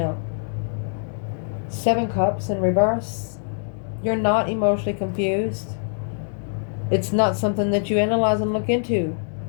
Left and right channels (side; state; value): right; silent; digital silence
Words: 7 Cups in reverse. You're not emotionally confused. It's not something that you analyze and look into.